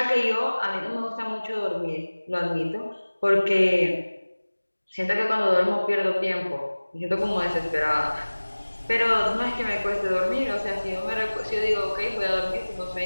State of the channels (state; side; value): inverted; both; correlation -1.00